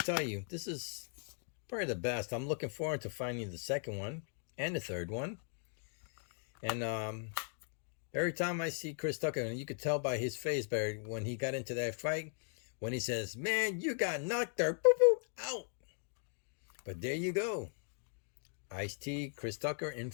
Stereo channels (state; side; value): silent; right; 52 dB below the other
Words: you, this is probably the best. I'm looking forward to finding the second one and the third one. And every time I see Chris Tucker, and you could tell by his face, Barry, when he got into that fight, when he says, "Man, you got knocked there, boop, boop, out." But there you go. Ice-T, Chris Tucker, and